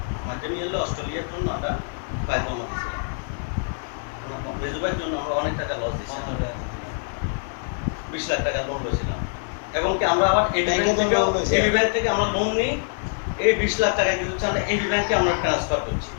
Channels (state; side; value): silent; right; digital silence